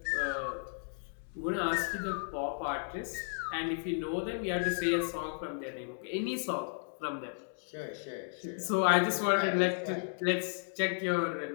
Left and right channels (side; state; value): right; silent; digital silence